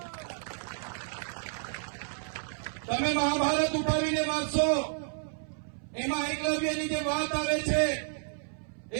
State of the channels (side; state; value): left; silent; 57 dB below the other